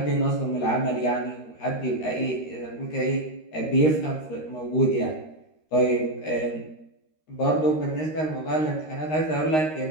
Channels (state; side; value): late; right; 13 ms